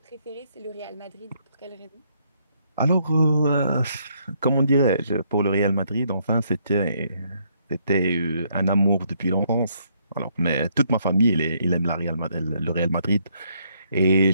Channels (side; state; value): both; inverted; correlation -0.71